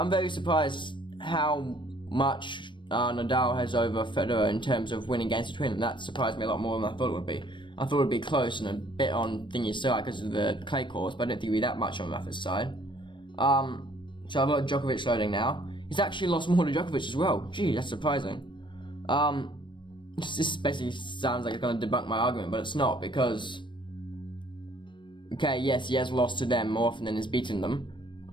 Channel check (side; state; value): right; late; 0.23 ms